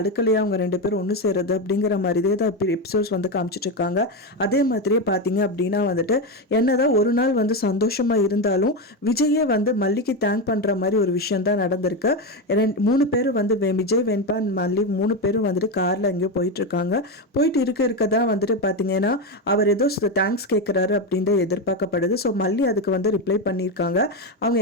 அவங்க ரெண்டு பேரும் ஒன்று சேருது அப்படிங்கிற மாதிரியே தான் எபிசோட்ஸ் வந்து காமிச்சிட்டு இருக்காங்க. அதே மாதிரியே பார்த்தீங்க அப்படின்னா வந்துட்டு என்னதான் ஒரு நாள் வந்து சந்தோஷமாக இருந்தாலும் விஜயே வந்து மல்லிக்கு தேங்க் பண்ணுற மாதிரி ஒரு விஷயம் தான் நடந்திருக்கு. மூணு பேர் வந்து விஜய், வெண்பா, மல்லி மூணு பேரும் வந்துட்டு காரில் எங்கேயோ போயிட்டுருக்காங்க. போயிட்டு இருக்க தான் வந்துட்டு பார்த்தீங்கன்னா அவர் ஏதோ தேங்க்ஸ் கேட்குறாரு அப்படின்ட்டு எதிர்பார்க்கப்படுது. ஸோ மல்லி அதுக்கு வந்து ரிப்ளை பண்ணியிருக்காங்க. அவங்க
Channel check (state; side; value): normal; both; correlation 0.12